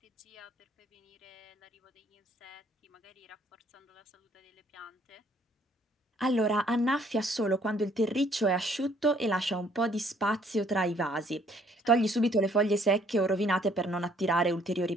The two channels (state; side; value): normal; both; correlation 0.63